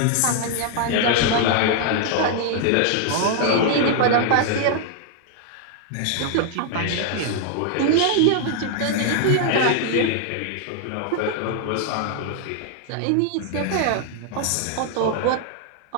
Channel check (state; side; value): different; both; correlation 0.00